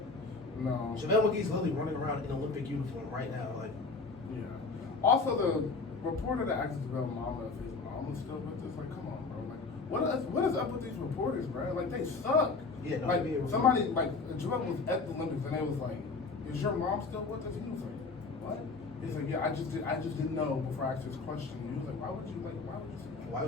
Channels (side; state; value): right; quieter; 4.1 dB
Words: no. JaVale McGee's literally running around in Olympic uniform right now. Like, yeah. Also, the reporter that asked JaVale mama if his mom was still with us. Like, come on, bro. Like, what is up with these reporters, bro? Like, they suck. Yeah. No, like somebody like JaVale was at the Olympics and they was like, "Is your mom still with us?" He was like, "What?" He's like, yeah, I just didn't know before I asked this question. He was like, why would you